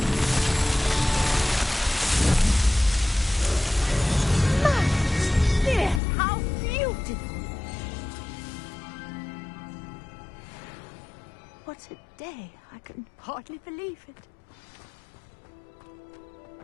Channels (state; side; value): drops out; right; at 6.0 s